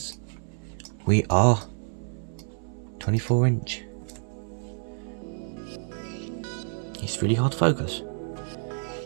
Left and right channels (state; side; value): silent; left; 59 dB below the other